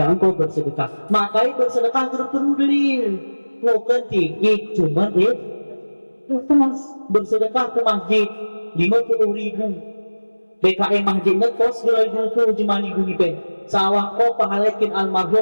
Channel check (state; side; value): inverted; both; correlation -1.00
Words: engkau bersedekah, makanya bersedekah perlu dalil. Bukan tinggi, cuma bersedekah ke masjid 50.000. PKM masjid ngekos 2.000 jemani guni pe. Sawah kau pahalakin